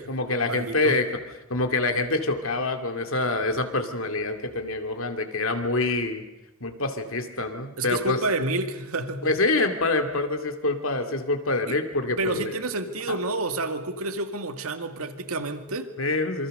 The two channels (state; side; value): normal; both; correlation -0.14